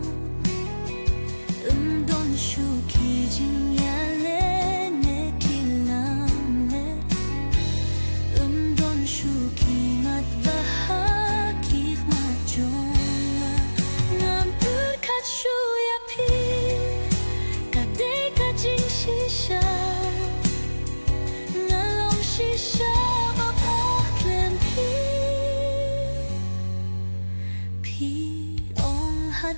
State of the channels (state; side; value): inverted; both; correlation -1.00